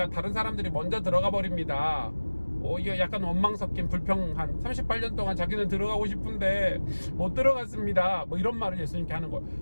다른 사람들이 먼저 들어가 버립니다. 이게 약간 원망 섞인 불평한, 38년 동안 자기는 들어가고 싶은데 못 들어갔습니다, 이런 말을 예수님께 하는 거예요.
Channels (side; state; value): both; inverted; correlation -1.00